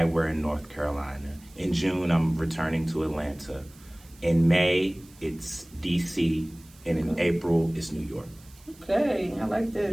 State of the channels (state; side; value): noise; right; hiss, 25 dB below the sound